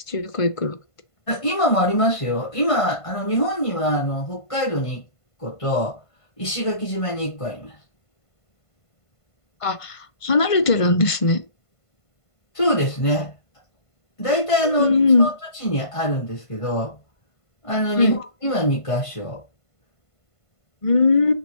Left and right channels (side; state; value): right; late; 1.5 ms